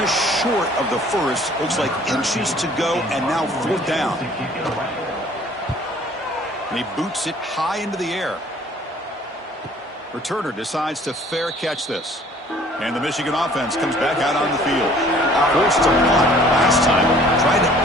short of the first. Looks like inches to go, and now fourth down. And he boots it high into the air. Returner decides to fair catch this. And the Michigan offense comes back out on the field. Forced to punt last time. Trying to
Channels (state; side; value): normal; both; correlation 0.54